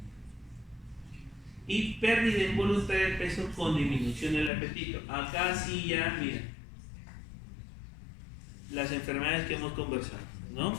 Y pérdida involuntaria de peso con disminución del apetito. Acá sí ya, mira, las enfermedades que hemos conversado, ¿no?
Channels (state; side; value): drops out; right; at 4.5 s